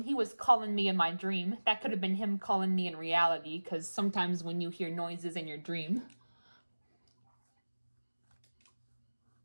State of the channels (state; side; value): inverted; both; correlation -1.00